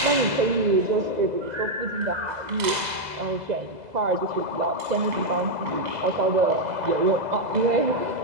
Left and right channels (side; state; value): left; late; 2.0 ms